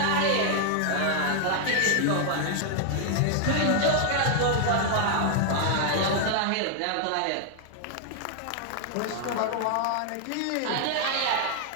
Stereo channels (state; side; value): different; both; correlation 0.00